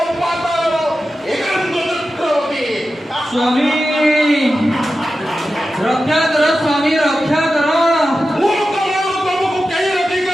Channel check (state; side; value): normal; both; correlation 0.92